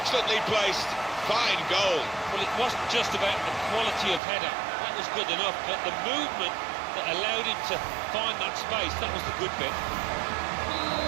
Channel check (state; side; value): drops out; left; at 4.2 s